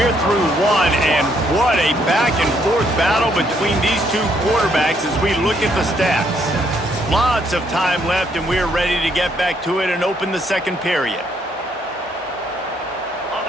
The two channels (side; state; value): both; normal; correlation 0.71